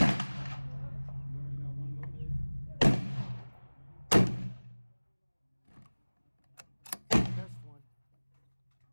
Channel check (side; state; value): both; inverted; correlation -1.00